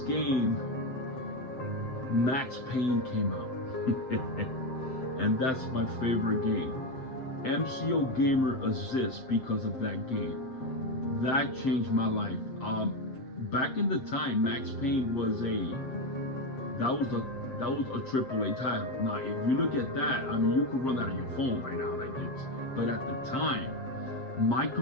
Max Payne, came out. And that's my favorite game. MCOGAMER27 because of that game. That changed my life. Back in the time, Max Payne was a AAA title. Now, if you look at that, I mean, you could run that on your phone right now, like this. But at the time, my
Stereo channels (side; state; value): right; late; 7.6 ms